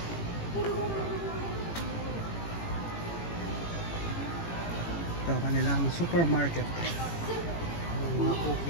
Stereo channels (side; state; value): right; late; 18 ms